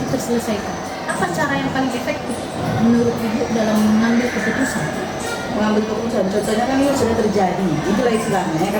terselesaikan. Apa cara yang paling efektif menurut Ibu dalam mengambil keputusan? Mengambil keputusan, contohnya kan ini sudah terjadi, itulah istilahnya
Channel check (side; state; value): both; identical; correlation 1.00